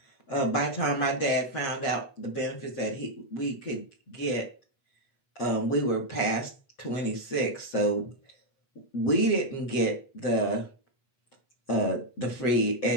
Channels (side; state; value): right; late; 8.2 ms